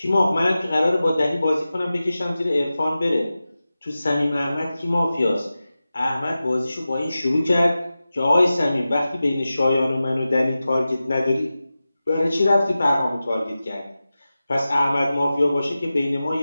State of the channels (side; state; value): both; inverted; correlation -0.94